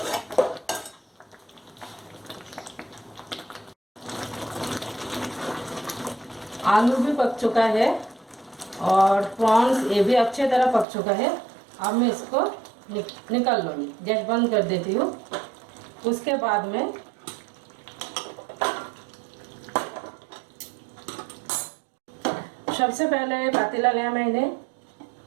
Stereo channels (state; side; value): drops out; left; at 10.9 s